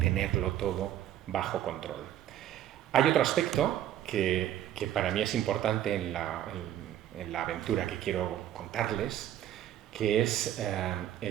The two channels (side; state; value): left; quieter; 11.8 dB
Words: todo bajo control. Hay otro aspecto que para mí es importante en la aventura que quiero contarles, que es